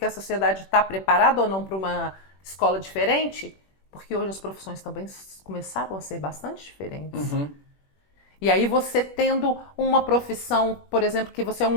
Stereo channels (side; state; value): right; late; 21 ms